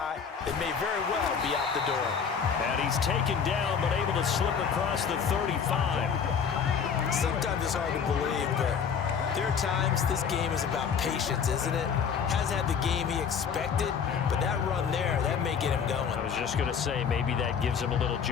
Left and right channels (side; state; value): right; quieter; 6.8 dB